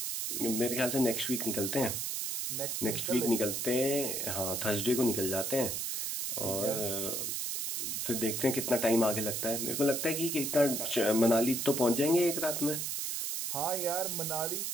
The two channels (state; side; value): noise; right; hiss, 2 dB below the sound